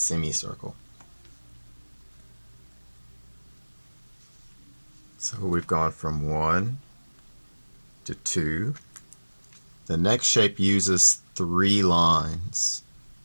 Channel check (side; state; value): both; inverted; correlation -1.00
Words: So we've gone from 1 to 2. The next shape uses 3 lines.